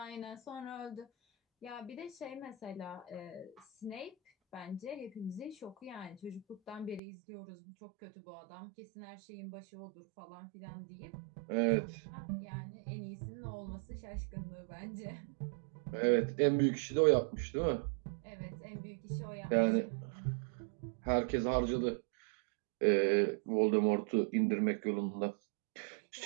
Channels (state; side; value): drops out; left; at 7.0 s